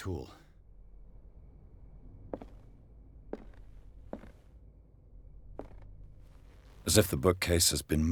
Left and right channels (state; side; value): identical; both; correlation 1.00